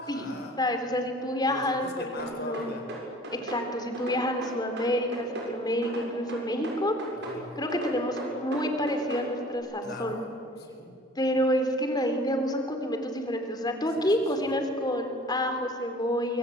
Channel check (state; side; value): normal; both; correlation 0.49